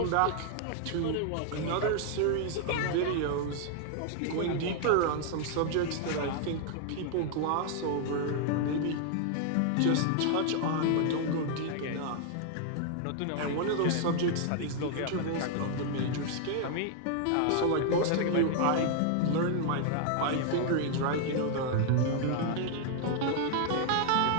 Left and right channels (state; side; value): different; both; correlation 0.00